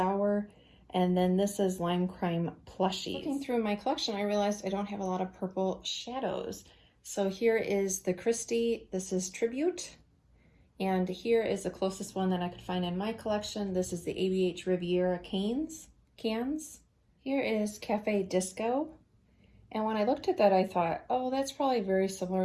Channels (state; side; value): identical; both; correlation 1.00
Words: And then this is Lime Crime Plushies. Looking through my collection, I realized I don't have a lot of purple shadows. So here is the Kristi, this is Tribute. And here is the closest one that I could find in my collection. This is the ABH Riviera cans. Here is Cafe Disco. And when I looked at that, I thought, oh, that's probably very